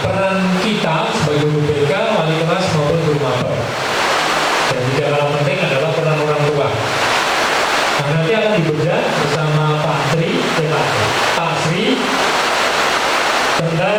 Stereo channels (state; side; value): identical; both; correlation 1.00